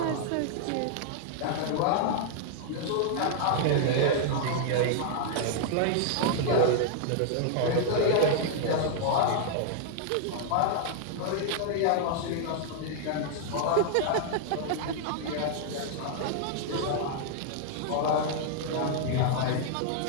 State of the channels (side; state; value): both; different; correlation -0.01